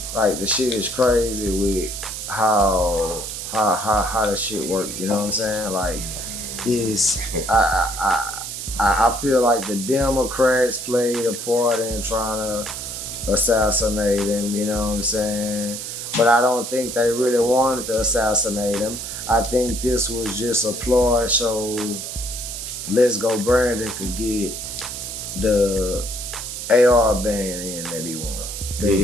Like, the shit is crazy with how the shit works. You know what I'm saying? Like, I feel like the Democrats played a part in trying to assassinate him, you know what I'm saying? But I don't think they really wanted to assassinate him. I think this was just a ploy so Let's Go Brandon could get the AR ban in that he wanted. That he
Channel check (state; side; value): noise; right; hiss, 7 dB below the sound